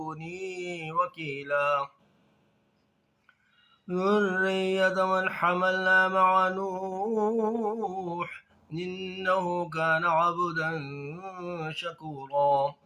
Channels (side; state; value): both; identical; correlation 1.00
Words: وكيلا ذرية من حملنا مع نوح إنه كان عبدا شكورا.